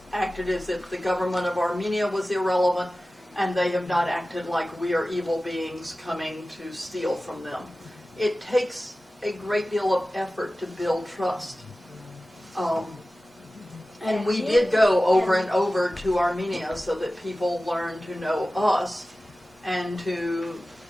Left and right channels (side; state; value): both; normal; correlation 0.96